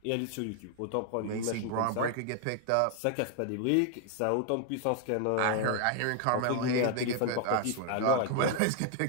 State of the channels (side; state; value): both; different; correlation 0.00